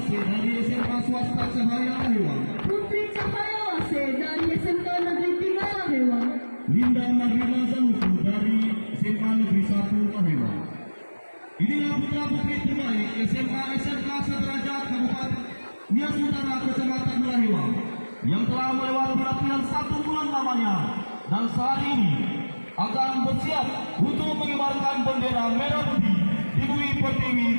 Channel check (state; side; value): inverted; both; correlation -1.00